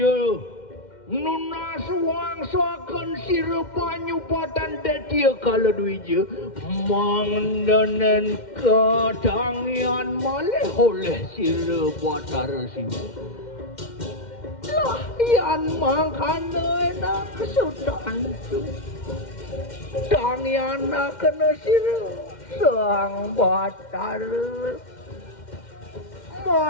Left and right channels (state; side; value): late; right; 2.1 ms